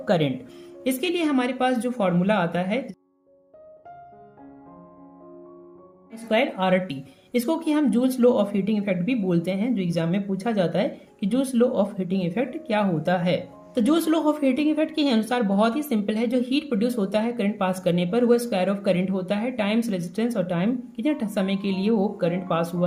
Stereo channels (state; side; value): identical; both; correlation 1.00